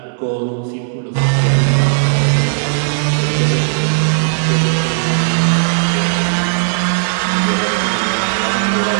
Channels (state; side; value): silent; left; digital silence